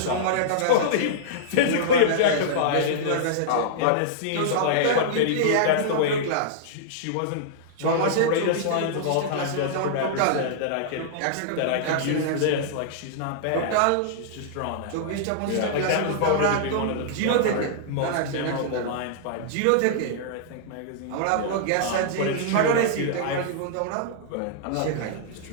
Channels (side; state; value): both; different; correlation -0.02